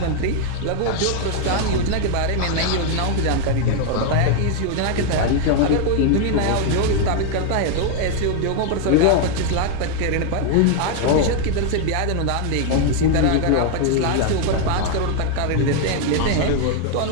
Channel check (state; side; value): different; both; correlation 0.00